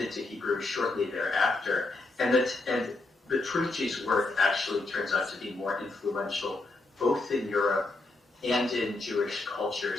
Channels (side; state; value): right; quieter; 3.2 dB